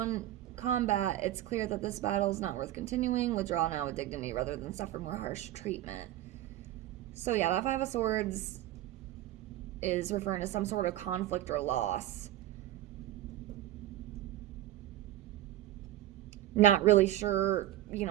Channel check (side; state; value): left; quieter; 13.9 dB